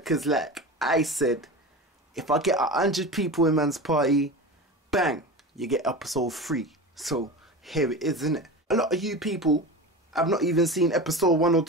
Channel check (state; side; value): normal; both; correlation 0.29